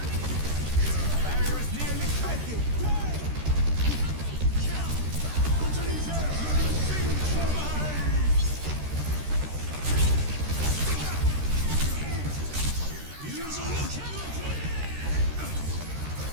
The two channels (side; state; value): left; late; 13 ms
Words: Barrier is nearly breaking.